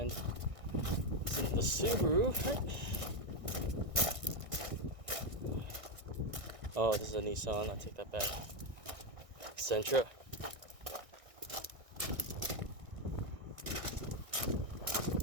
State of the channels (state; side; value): late; left; 1.6 ms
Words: It's in the Subaru. Oh, this is a Nissan. I'll take that back. Sentra.